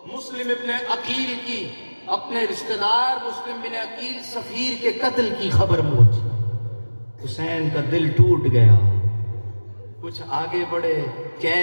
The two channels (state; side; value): inverted; both; correlation -1.00